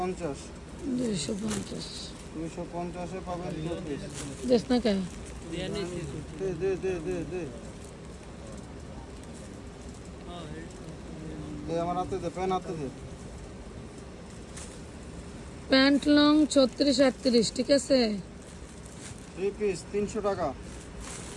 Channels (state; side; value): identical; both; correlation 1.00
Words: 250 250 এ পাবেন টু পিস দেশ না কে দে দে দে দে দে দে আমার হাতে দে পেন হাতে দে প্যান্ট লং 36 38, ঠিক আছে। 3 পিস 300 টাকা